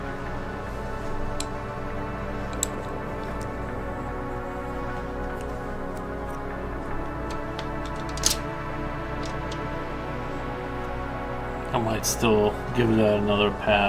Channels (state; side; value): identical; both; correlation 1.00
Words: I might still give that another